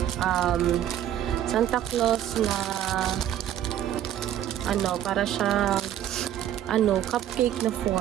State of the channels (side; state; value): left; quieter; 11.3 dB